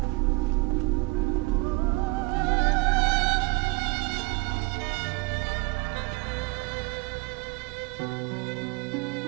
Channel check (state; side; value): quieter; left; 25.7 dB